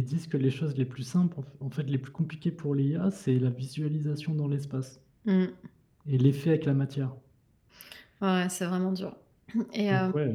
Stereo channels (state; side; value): identical; both; correlation 1.00